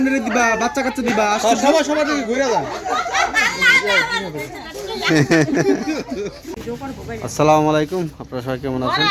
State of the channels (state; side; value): identical; both; correlation 1.00